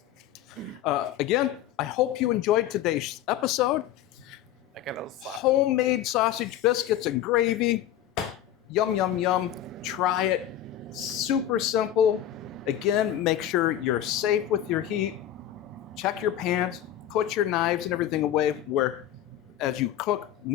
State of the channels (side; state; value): right; quieter; 11.5 dB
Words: Again, I hope you enjoyed today's episode. I got a Homemade sausage biscuits and gravy. Yum, yum, yum. Try it. Super simple. Again, make sure you're safe with your heat. Check your pans. Put your knives and everything away where, as you cook,